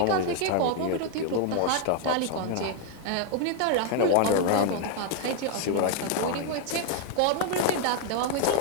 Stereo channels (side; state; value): both; different; correlation 0.00